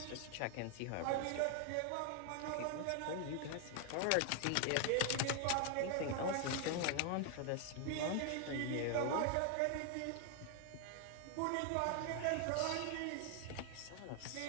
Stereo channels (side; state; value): both; different; correlation 0.00